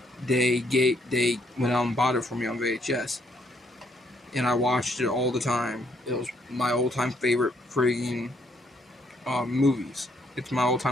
they went out and bought it for me on VHS. And I watched it all the time. It was my all-time favorite friggin' movies. It's my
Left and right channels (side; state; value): both; normal; correlation 0.71